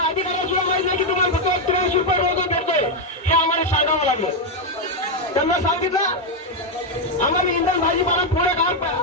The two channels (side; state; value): both; normal; correlation 0.02